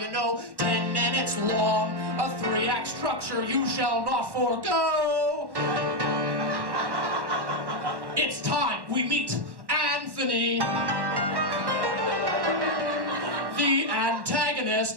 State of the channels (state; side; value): late; left; 1.1 ms